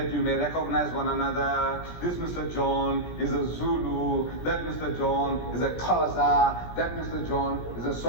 you may recognize one another. This Mr. John is a Zulu, that Mr. John is a Xhosa, that Mr. John is a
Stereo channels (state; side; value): late; right; 17 ms